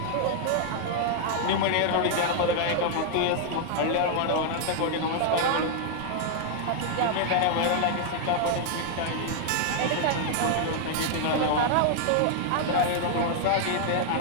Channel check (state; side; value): different; both; correlation 0.00